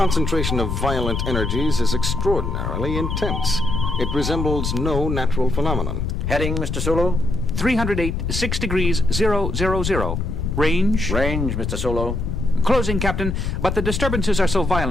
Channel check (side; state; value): left; noise; rumble, 2 dB below the sound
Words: of violent energies is extraordinarily intense. It resembles no natural phenomenon. Heading, Mr. Sulu? 308, 6 degrees, 000. Range? Range, Mr. Sulu. Closing, Captain, but the disturbances are so